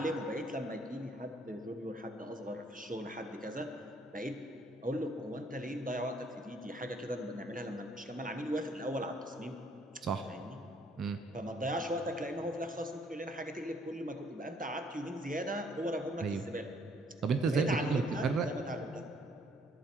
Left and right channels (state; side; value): normal; both; correlation 0.64